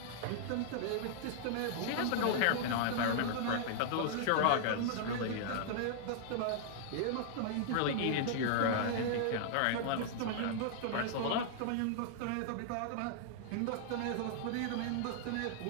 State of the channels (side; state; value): both; different; correlation -0.01